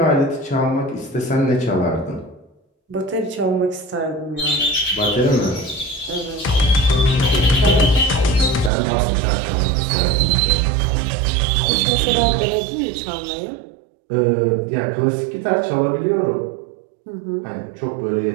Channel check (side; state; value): left; drops out; at 8.7 s